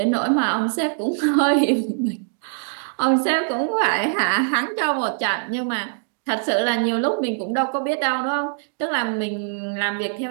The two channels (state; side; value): silent; left; digital silence